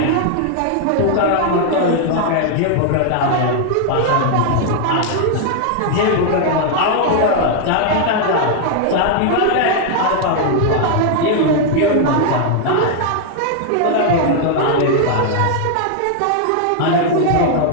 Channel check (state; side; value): different; both; correlation 0.00